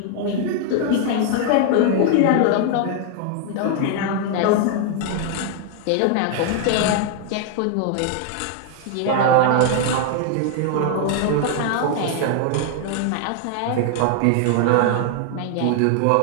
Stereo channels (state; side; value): different; both; correlation 0.00